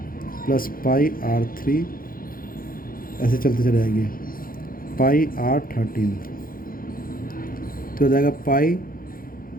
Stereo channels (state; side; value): late; right; 0.42 ms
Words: plus πr3 ऐसे चलते चले जाएगी πr13। तो हो जाएगा पाई